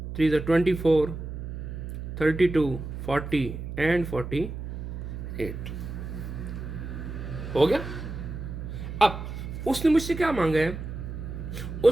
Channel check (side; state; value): right; noise; hum, 7 dB below the sound